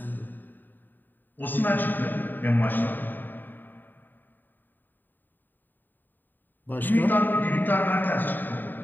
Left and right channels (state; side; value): late; right; 0.090 ms